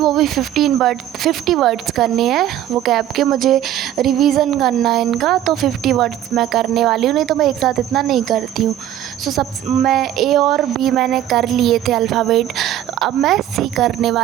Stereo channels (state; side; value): quieter; left; 12.0 dB